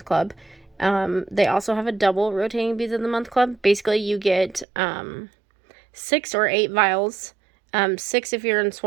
Club. They also have a double rotating Beads of the Month Club. Basically, you get 6 or 8 vials, 6 if you're in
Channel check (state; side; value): drops out; left; at 4.7 s